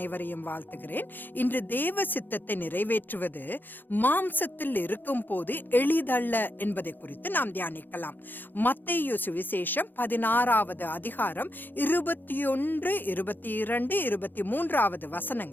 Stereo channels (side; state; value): right; late; 0.091 ms